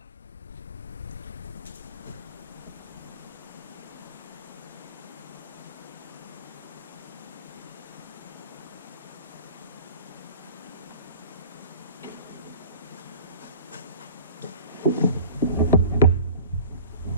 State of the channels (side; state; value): both; inverted; correlation -0.44